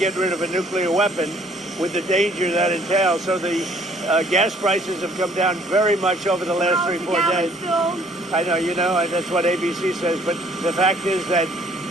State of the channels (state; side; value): normal; both; correlation 0.60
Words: rid of a nuclear weapon with the danger that entails. So the gas prices have come down very much over the last 3-4 days. I know, that's what ABC says. But the fact is that